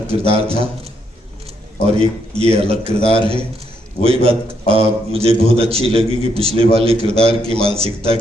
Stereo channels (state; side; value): normal; both; correlation 0.75